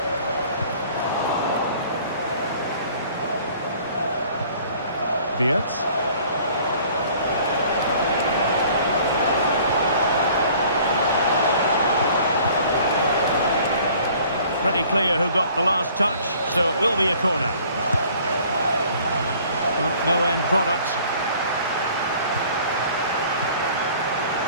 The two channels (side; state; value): both; inverted; correlation -0.53